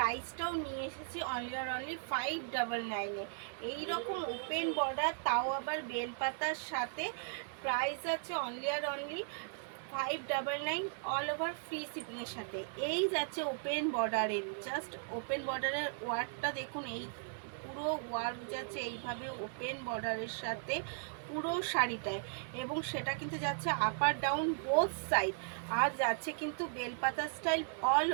নিয়ে এসেছি অনলি 599-এ। এইরকম ওপেন বর্ডার, তাও আবার বেলপাতার সাথে। প্রাইস আছে অনলি 599, অল ওভার ফ্রি শিপিংয়ের সাথে। এই যাচ্ছে ওপেন বর্ডারের, জাস্ট ওপেন বর্ডারের ওয়ার্কটা দেখুন। এই পুরো ওয়ার্ক যাচ্ছে এইভাবে ওপেন বর্ডারের সাথে পুরো শাড়িটায়, এবং সেটা কিন্তু যাচ্ছে আপার ডাউন বোথ সাইড। আর যাচ্ছে কিন্তু বেলপাতা স্টাইল অল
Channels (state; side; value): silent; left; digital silence